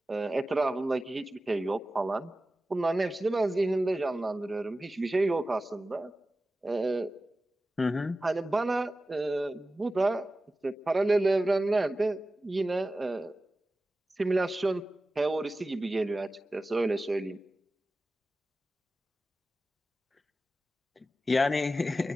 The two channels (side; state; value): both; normal; correlation 0.95